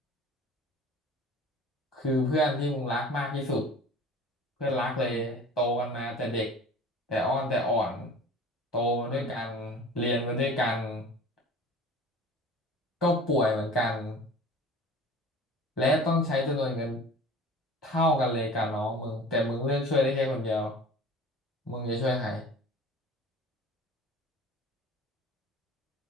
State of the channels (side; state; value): both; normal; correlation 0.42